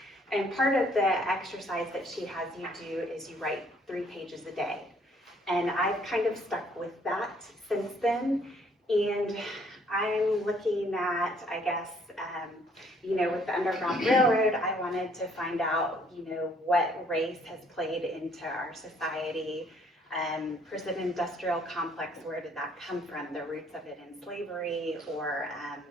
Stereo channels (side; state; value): both; normal; correlation 0.63